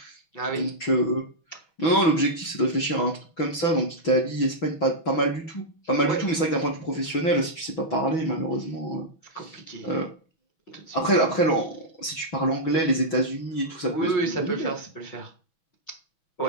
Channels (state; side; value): late; right; 6.1 ms